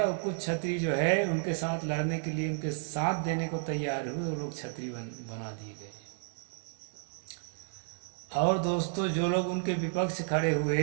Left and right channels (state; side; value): silent; left; digital silence